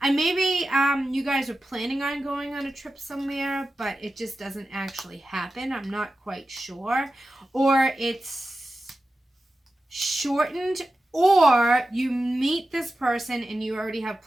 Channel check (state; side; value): normal; both; correlation 0.93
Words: maybe you guys are planning on going on a trip somewhere, but it just doesn't actually happen. I'm not quite sure. Or it's shortened, or you meet this person and you already have